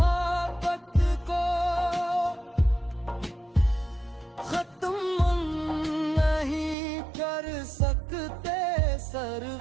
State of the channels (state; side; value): drops out; left; at 6.8 s